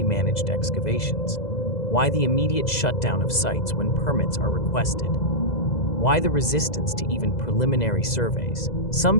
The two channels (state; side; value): late; right; 2.0 ms